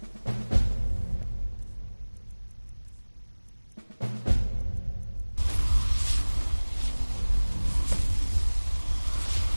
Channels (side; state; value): both; inverted; correlation -1.00